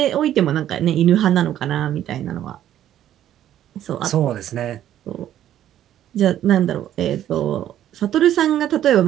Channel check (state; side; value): quieter; left; 11.6 dB